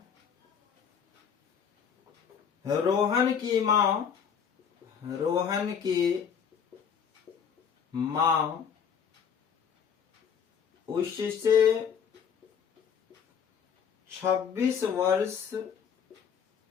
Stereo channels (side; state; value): right; quieter; 7.3 dB